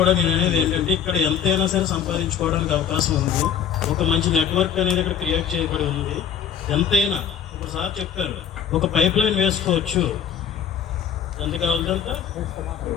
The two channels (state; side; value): quieter; right; 8.0 dB